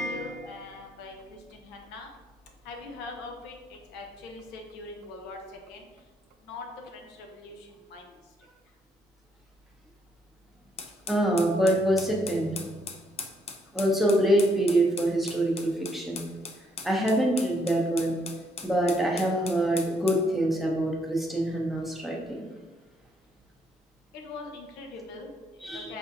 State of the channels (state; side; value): normal; both; correlation 0.72